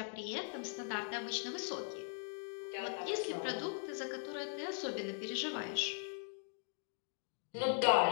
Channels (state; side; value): silent; right; digital silence